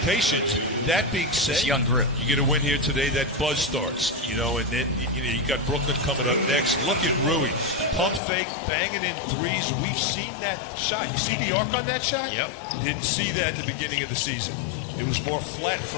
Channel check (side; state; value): right; drops out; at 8.2 s